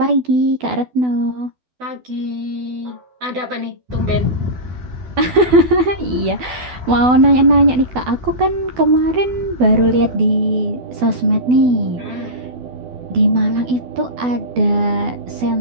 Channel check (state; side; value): late; left; 12 ms